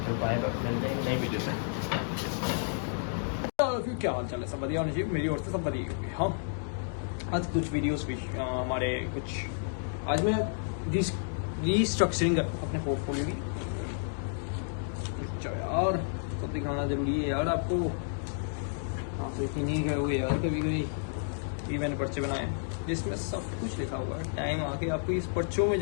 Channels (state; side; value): silent; right; digital silence